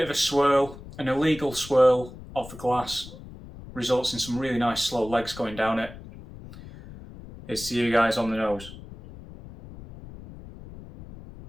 of a swirl, an illegal swirl of the glass results in some really nice slow legs going down it. Here's to you guys on the nose.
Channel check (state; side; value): noise; left; rumble, 16 dB below the sound